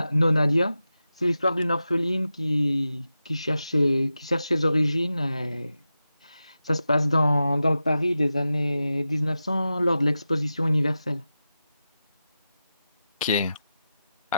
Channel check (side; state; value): both; inverted; correlation -0.92